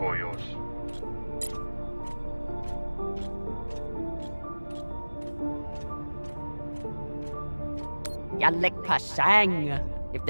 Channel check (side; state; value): both; inverted; correlation -1.00